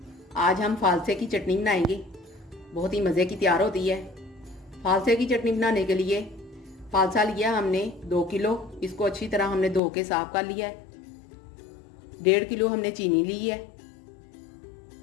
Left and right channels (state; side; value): drops out; right; at 9.8 s